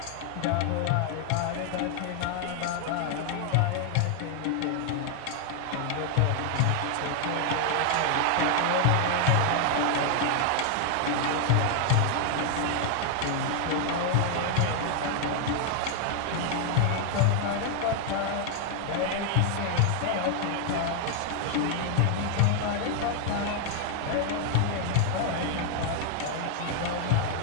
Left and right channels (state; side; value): different; both; correlation 0.00